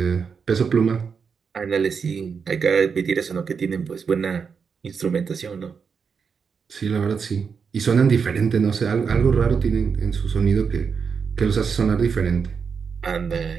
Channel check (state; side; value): quieter; left; 6.0 dB